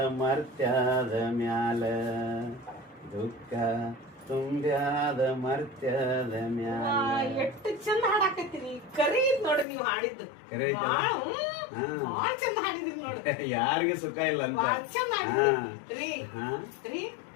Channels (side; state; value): right; drops out; at 9.7 s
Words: ಮರ್ತ್ಯಾದ ಮ್ಯಾಲ ದುಃಖ ತುಂಬ್ಯಾದ ಮರ್ತ್ಯಾದ ಮ್ಯಾಲ. ಎಷ್ಟು ಚಂದ ಹಾಡಾಕತ್ತೀರಿ. ಕರಿ ನೋಡ್ರಿ ನೀವು ಹಾಡಿದ್ದು ಕರೆ ಐತಲ್ಲ? ಬಾಳ ಚಂದ ಹಾಡಿದ್ರಿ ನೋಡ್ರಿ. ಯಾರಿಗೆ ಸುಖ ಇಲ್ಲ ಅಂತ ಬಾಳ ಚಂದ ಹಾಡಿದ್ರಿ ರೀ ಹಾ ರೀ